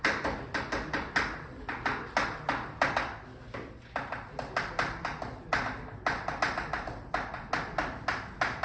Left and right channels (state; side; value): identical; both; correlation 1.00